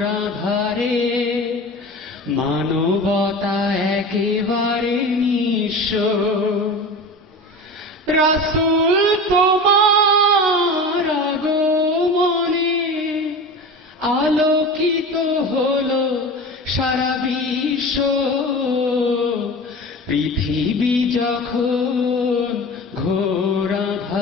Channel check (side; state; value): both; normal; correlation 0.32